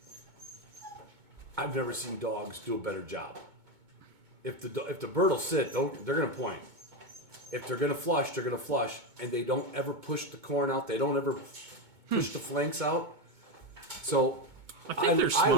I've never seen dogs do a better job. If the bird will sit, they're going to point. If they're going to flush, they're going to flush, and they don't ever push the corn out. They don't ever push the flanks out. So I think they're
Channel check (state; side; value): late; left; 2.2 ms